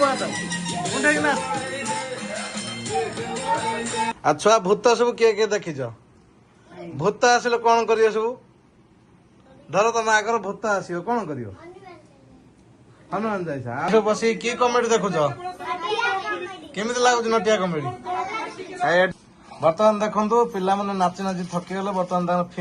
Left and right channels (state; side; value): identical; both; correlation 1.00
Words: मुंडा ना छुआ भूत सब किए किए देखीच भूत आसिले कौन करियो सब धर तुम आगर भूत आसो कौन करियो हनुमान जाइसा बस कि कमेडी देखुच केमी लगुच नटिया कमेडी बर्तमान देखो पिला मैंने नाची नाची थकी गले बर्तमान